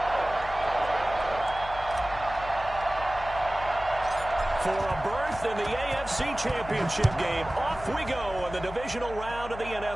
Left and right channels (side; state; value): left; noise; hum, 13 dB below the sound